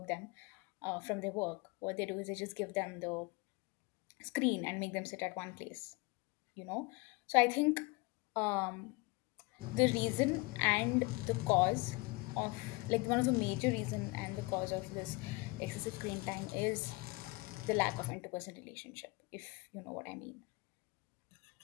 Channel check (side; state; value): right; quieter; 25.7 dB